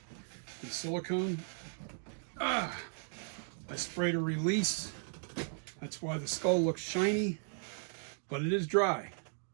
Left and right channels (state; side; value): silent; left; 54 dB below the other